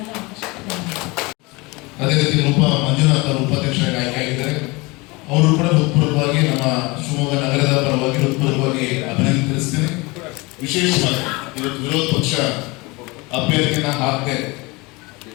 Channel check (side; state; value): right; quieter; 24.9 dB